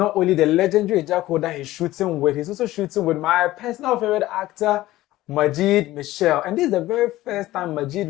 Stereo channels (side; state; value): right; quieter; 16.4 dB